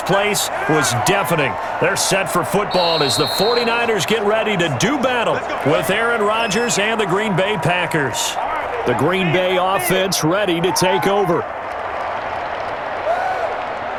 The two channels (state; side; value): identical; both; correlation 1.00